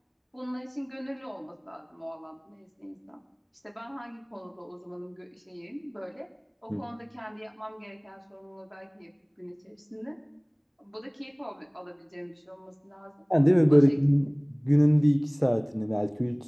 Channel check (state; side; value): identical; both; correlation 1.00